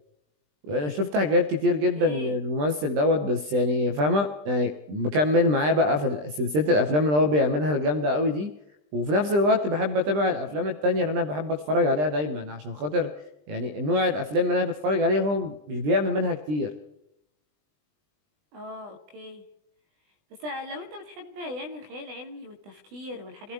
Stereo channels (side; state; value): left; late; 20 ms